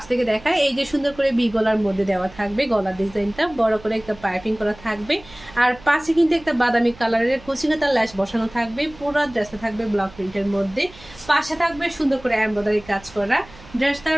থেকে দেখায়। এই যে সুন্দর করে বি গলার মধ্যে দেওয়া থাকবে, গলার ডিজাইনটা বড় করে একটা পাইপিং করা থাকবে, আর পাশে কিন্তু একটা বাদামি কালারের কুচিকাতার ল্যাশ বসানো থাকবে। পুরো ড্রেসটা থাকবে ব্লক প্রিন্টের মধ্যে, পাশে থাকবে সুন্দর করে এমব্রয়ডারি কাজ করা।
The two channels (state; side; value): noise; right; hum, 21 dB below the sound